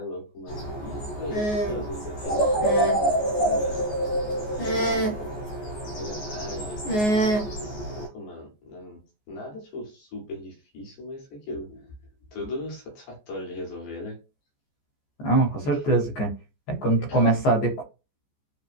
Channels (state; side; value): late; right; 14 ms